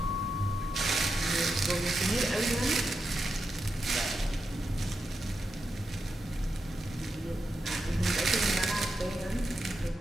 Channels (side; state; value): both; normal; correlation 0.87